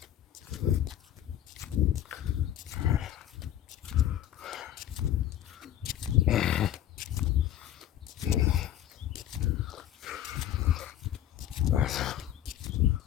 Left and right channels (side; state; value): right; quieter; 11.6 dB